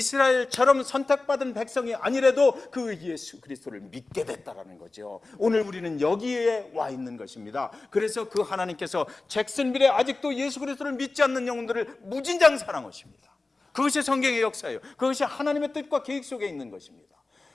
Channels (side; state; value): right; quieter; 3.4 dB